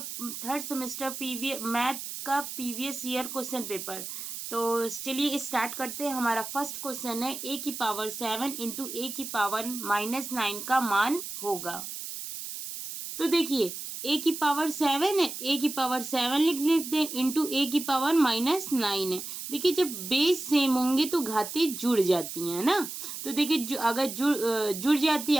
थर्ड सेमेस्टर मैथ का प्रीवियस ईयर क्वेश्चन पेपर। तो चलिए स्टार्ट करते हैं। हमारा फर्स्ट क्वेश्चन है a की पावर 7 इंटू a की पावर -9 का मान होगा। तो देखिए a की पावर 7 है, a की पावर 7 लिख लेते हैं इंटू a की पावर -9 है। देखिए जब बेस सेम होंगे तो घातें जुड़ जाती हैं ना। तो देखिए अगर जुड़ जाती है,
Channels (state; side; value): noise; right; hiss, 8 dB below the sound